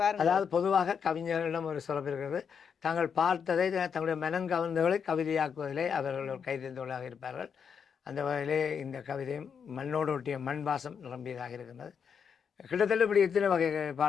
பாருங்க. அதாவது பொதுவாக கவிஞர்களிடம் ஒரு சிறப்பு இருக்கிறது. தாங்கள் பார்த்ததை தங்களுடைய மனம் கவர்ந்தவர்களை கவிதையாக்குவதிலே அவர்கள் ஒரு கைதேர்ந்தவர்களாக இருப்பார்கள். அந்த வகையிலே இந்த கவிதையும் மண்ணோடு ஒட்டிய மண் வாசம் நிரம்பியதாக இருக்கின்றது. கிட்டத்தட்ட இப்படி எத்தனை வகை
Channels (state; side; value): quieter; right; 6.9 dB